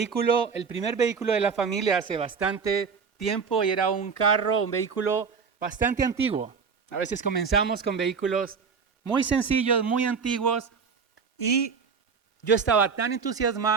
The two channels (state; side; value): quieter; left; 5.8 dB